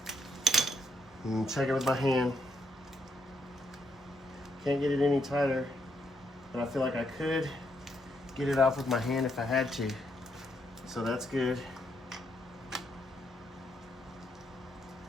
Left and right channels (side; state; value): both; normal; correlation 0.75